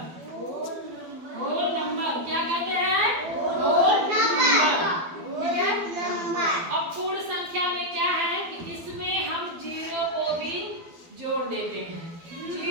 होल नंबर क्या कहते हैं? Whole number. ठीक है, अब पूर्ण संख्या में क्या है कि इसमें हम 0 को भी जोड़ देते हैं।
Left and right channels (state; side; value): late; left; 12 ms